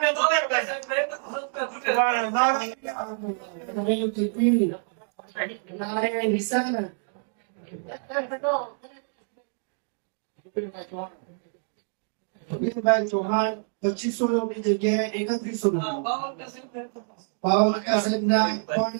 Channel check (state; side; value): silent; left; digital silence